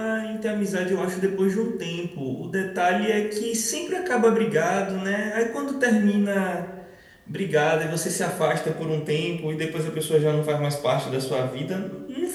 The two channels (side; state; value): both; identical; correlation 1.00